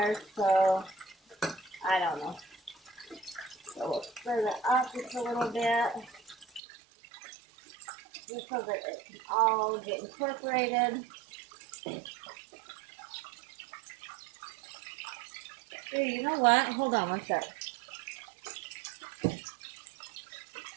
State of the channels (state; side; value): drops out; left; at 6.6 s